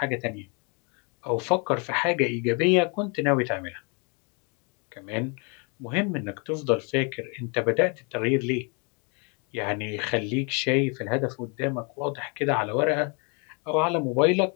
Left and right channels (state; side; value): quieter; right; 34.2 dB